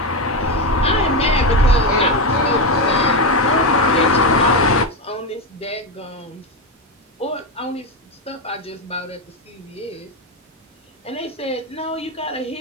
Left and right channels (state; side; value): normal; both; correlation 0.11